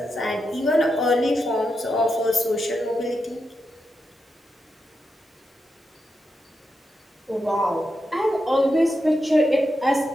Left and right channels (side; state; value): both; normal; correlation 0.86